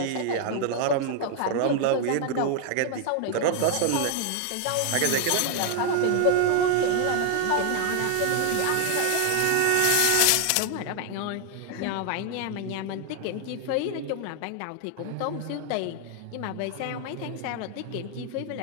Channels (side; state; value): both; different; correlation 0.00